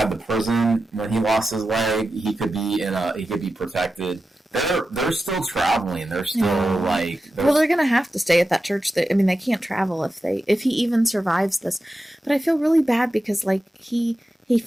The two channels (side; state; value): both; normal; correlation 0.92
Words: the prison when he lost his leg. He could be protected. They're still traveling. They're still they're gonna have to stay at that church. I mean, they can't travel if he even survives this. But I feel really bad because he